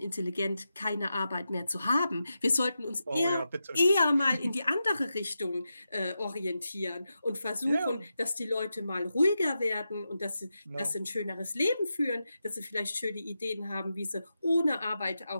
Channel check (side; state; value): both; inverted; correlation -0.89